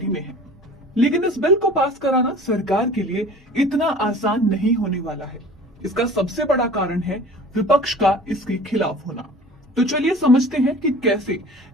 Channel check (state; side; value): normal; both; correlation 0.43